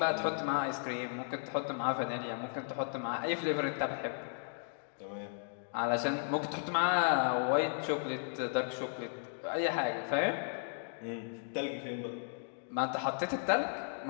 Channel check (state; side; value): silent; right; digital silence